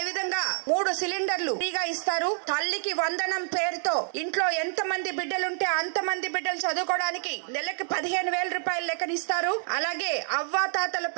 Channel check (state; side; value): silent; left; 58 dB below the other